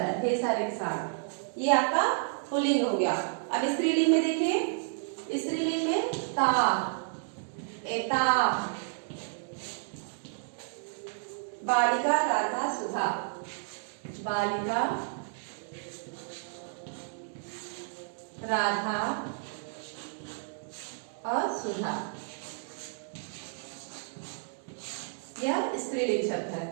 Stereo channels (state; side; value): silent; left; digital silence